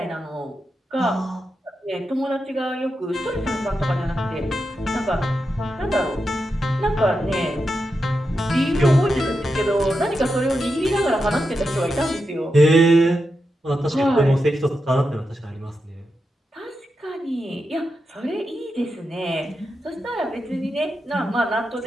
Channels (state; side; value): normal; both; correlation 0.88